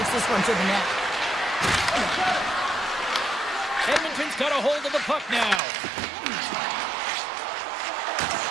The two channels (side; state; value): left; drops out; at 5.6 s